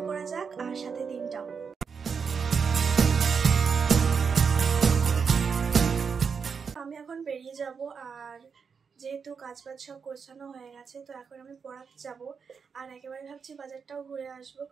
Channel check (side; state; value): left; quieter; 6.0 dB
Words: করা যাক, আর সাথে দিনটাও। আমি এখন বেরিয়ে যাব, আর যেহেতু কাজবাজ সব গোছানো হয়ে গেছে, তো এখন আমি পড়াতে যাব। আর একেবারে ভাবছি বাজারটাও ঘুরে আসবো,